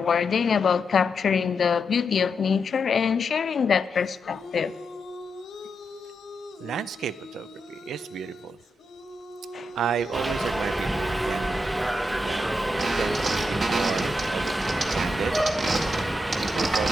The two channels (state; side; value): normal; both; correlation 0.84